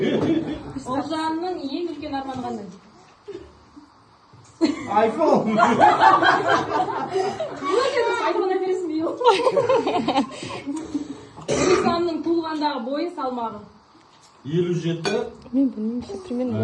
Олжанның ең үлкен арманы қандай? iPhone! Айфон әпересің бей ол. Нұрсұлтанның туылғандағы бойы салмағы. 57. Мен білмеймін, примерно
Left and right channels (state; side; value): identical; both; correlation 1.00